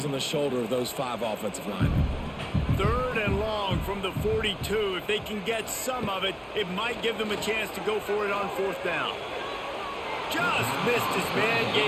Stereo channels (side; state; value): both; identical; correlation 1.00